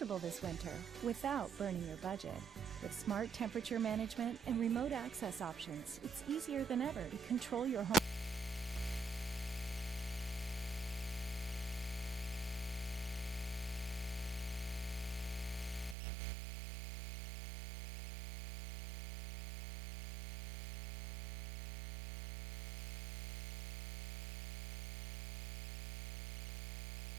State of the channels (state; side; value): drops out; left; at 16.0 s